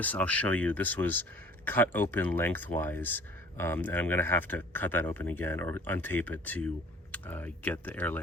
I'll show you. This was cut open lengthwise, and I'm going to have to cut that open again or untape it to get the air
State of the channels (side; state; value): both; normal; correlation 0.50